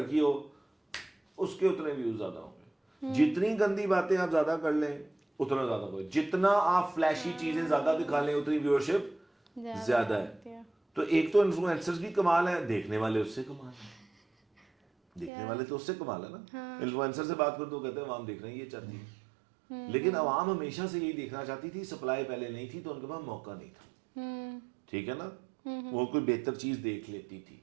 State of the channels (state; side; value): drops out; left; at 15.3 s